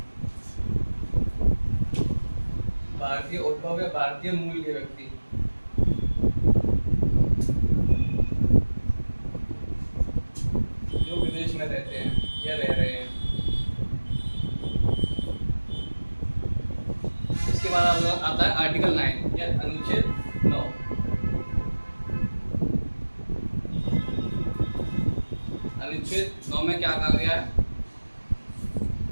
भारतीय उद्भव या भारतीय मूल के व्यक्ति जो विदेश में रहते हैं या रह रहे हैं। इसके बाद आता है आर्टिकल 9 या अनुच्छेद 9। अनुच्छेद 9 में क्या कहा गया है?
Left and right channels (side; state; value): both; inverted; correlation -1.00